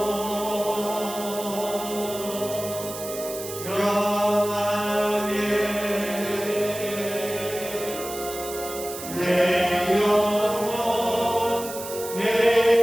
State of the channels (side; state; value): right; noise; hiss, 10 dB below the sound